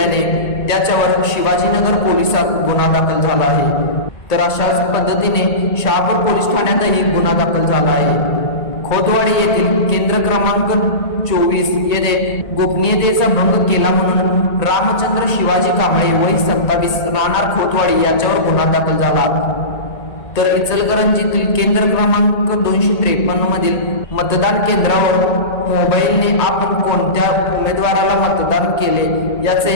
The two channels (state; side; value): late; right; 1.9 ms